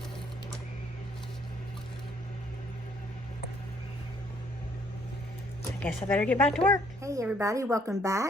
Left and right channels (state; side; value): normal; both; correlation 0.64